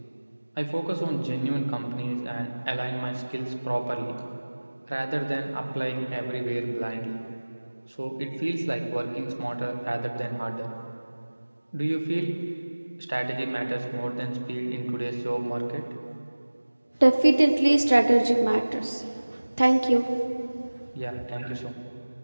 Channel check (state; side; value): inverted; both; correlation -1.00